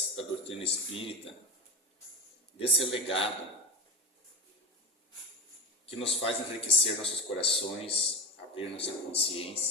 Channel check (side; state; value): both; normal; correlation 0.23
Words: da doutrina espírita, desse legado que nos faz enriquecer nossos corações, abrir nossa